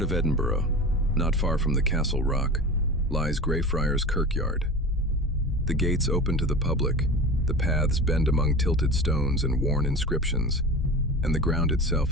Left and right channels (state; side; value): normal; both; correlation 0.32